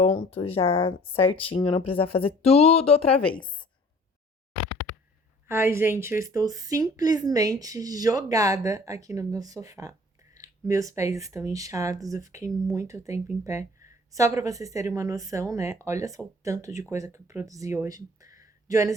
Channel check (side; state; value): both; normal; correlation 0.51